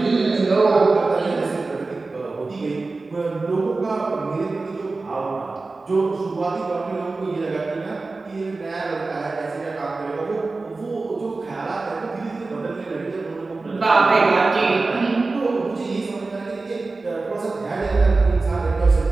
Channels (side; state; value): left; quieter; 3.6 dB